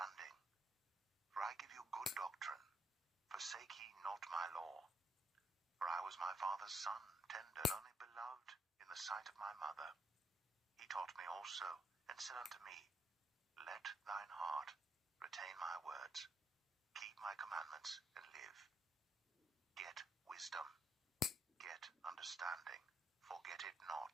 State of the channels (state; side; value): normal; both; correlation 0.74